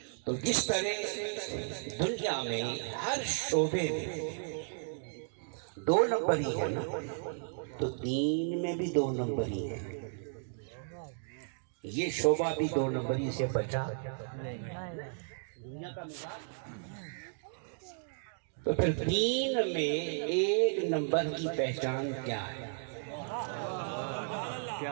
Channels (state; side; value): silent; left; digital silence